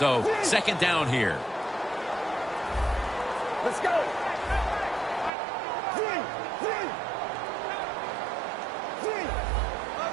second down here. Let's go.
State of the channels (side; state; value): left; drops out; at 5.3 s